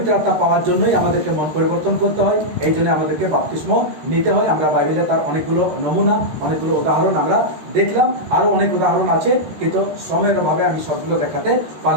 আত্মা পাওয়ার জন্যই আমাদেরকে মন পরিবর্তন করতে হয়, এই জন্য আমাদেরকে বাপ্তিস্ম নিতে হয়। আমরা বাইবেলে তার অনেকগুলো নমুনা, অনেকগুলো উদাহরণ আমরা দেখলাম, আরও অনেক উদাহরণ আছে, কিন্তু সময়ের অভাবে আমি সবগুলো দেখাতে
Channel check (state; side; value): late; left; 13 ms